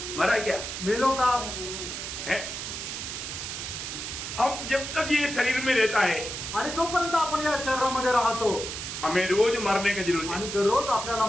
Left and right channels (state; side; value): noise; right; hiss, 6 dB below the sound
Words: मरा क्या? मेलो का? है हम जब तक ये शरीर में रहता है आणि जोपर्यंत आपण या शरीरामध्ये राहतो हमें रोज मरने की जरूरत है, आणि दररोज आपल्याला